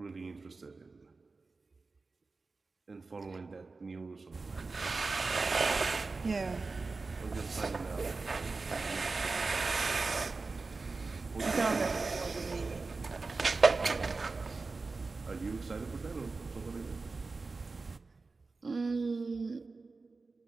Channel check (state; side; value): quieter; left; 3.9 dB